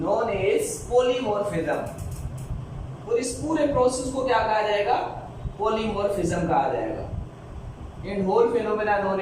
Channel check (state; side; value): identical; both; correlation 1.00